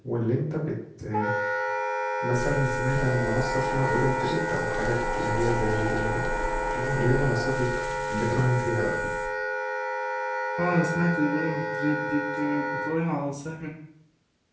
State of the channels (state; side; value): identical; both; correlation 1.00